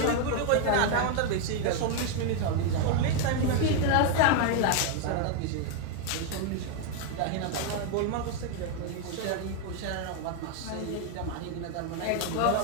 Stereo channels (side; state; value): both; different; correlation 0.01